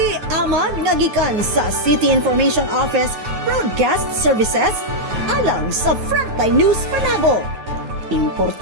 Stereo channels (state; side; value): late; left; 9.3 ms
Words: Amad nga gikan sa City Information Office Broadcast Services alang sa Frontline News Panabo.